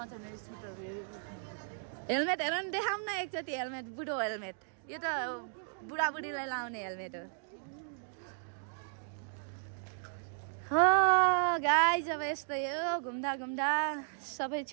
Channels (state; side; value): silent; left; digital silence